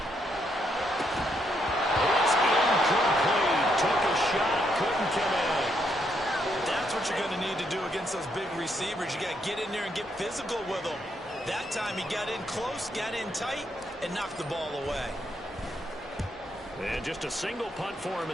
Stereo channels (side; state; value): both; normal; correlation 0.76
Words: It's incomplete. Took a shot, couldn't connect. That's what you're going to need to do against those big receivers. You got to get in there and get physical with them. That time he got in close, got in tight, and knocked the ball away. And just a single punt for him